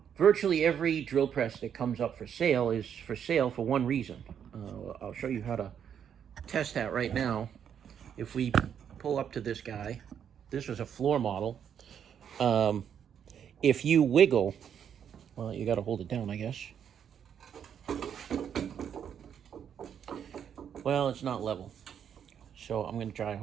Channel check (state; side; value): quieter; left; 8.4 dB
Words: virtually every drill press that comes up for sale is for sale for one reason. I'll show you how to test that right now. If we pull up to this guy, this was a floor model. Um, if you wiggle, well, you got to hold it down, I guess. Well, it's not level, so I'm going to try to